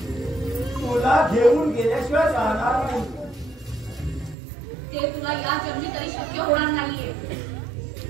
तुला घेऊन गेल्याशिवाय राहणार नाही. ते तुला या जन्मी तरी शक्य होणार नाहीये.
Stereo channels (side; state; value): left; drops out; at 4.4 s